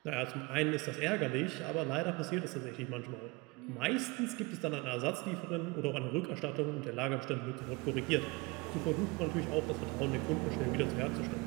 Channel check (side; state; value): left; quieter; 25.0 dB